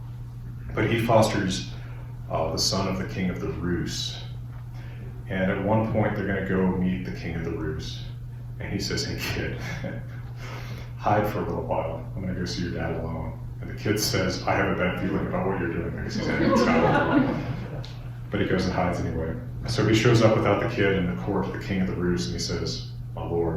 But he fosters the son of the king of the Rus. And at one point, they're going to go meet the king of the Rus. And he says, hey, kid, hide for a little while. I'm going to go see your dad alone. And the kid says, I have a bad feeling about what you're doing, because he's in Scotland. But he goes and hides anyway. So he shows up without the kid in the court of the king of the Rus, and he says, my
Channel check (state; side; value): identical; both; correlation 1.00